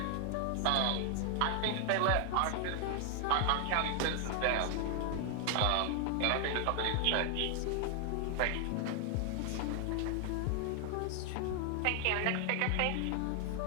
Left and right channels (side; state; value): both; different; correlation 0.00